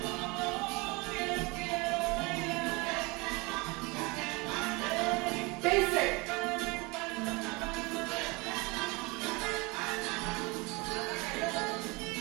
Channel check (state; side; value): quieter; left; 26.2 dB